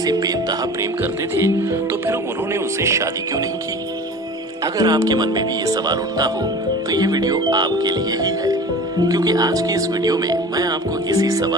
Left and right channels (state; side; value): normal; both; correlation 0.38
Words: बेतहा प्रेम करते थे तो फिर उन्होंने उनसे शादी क्यों नहीं की। अगर आपके मन में भी ये सवाल उठता हो तो ये वीडियो आपके लिए ही है, क्योंकि आज की इस वीडियो में मैं आपको इसी